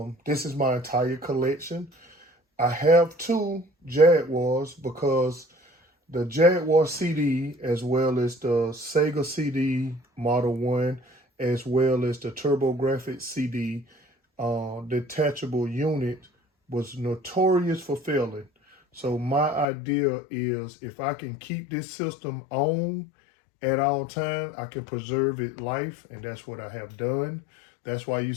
This is my entire collection. I have two Jaguars because the Jaguar CD, as well as the Sega CD Model 1, as well as the TurboGrafx CD detachable unit, was notorious for failing. So my idea is if I can keep this system on at all times, I can preserve its life, and that's what I have done. That's why you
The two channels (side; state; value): right; drops out; at 19.7 s